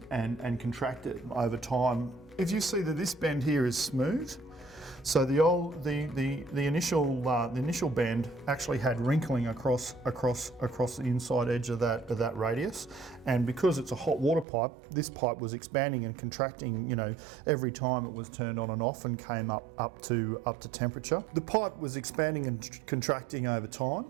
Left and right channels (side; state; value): left; drops out; at 14.5 s